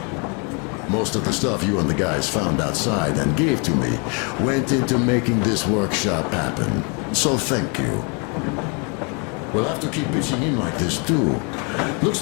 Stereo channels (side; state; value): right; quieter; 34.4 dB